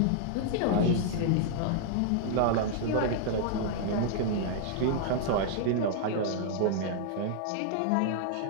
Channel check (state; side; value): different; both; correlation -0.01